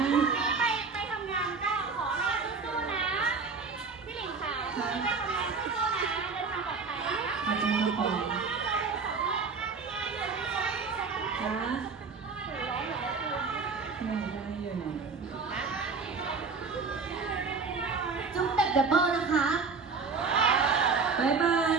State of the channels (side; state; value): left; quieter; 4.8 dB